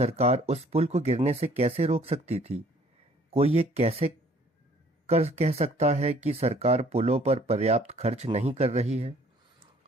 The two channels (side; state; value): both; normal; correlation 0.58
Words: उस पुल को गिरने से कैसे रोक सकती थी? कोई ये कैसे कह सकता है कि सरकार पुलों पर पर्याप्त खर्च नहीं कर रही है?